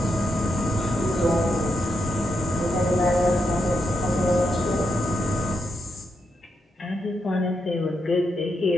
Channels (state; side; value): normal; both; correlation 0.83